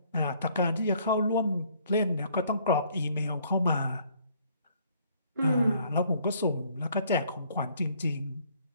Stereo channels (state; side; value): inverted; both; correlation -0.62